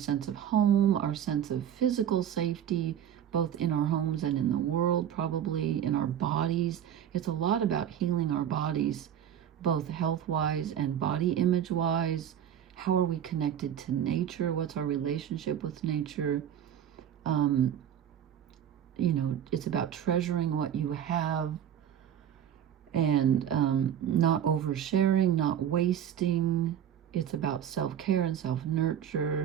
of home, our sense of physical safety, both in our homes and in the world, probably in our bodies. It's a lot about healing our bodies, both health-wise and body image-wise. How are we connected to nature? What's our relationship with nature? It's about treasuring what you have, and not oversharing, not wasting. It's about self-care and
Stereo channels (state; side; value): quieter; left; 9.8 dB